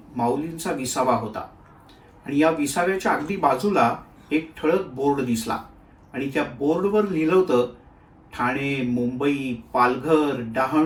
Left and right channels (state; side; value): identical; both; correlation 1.00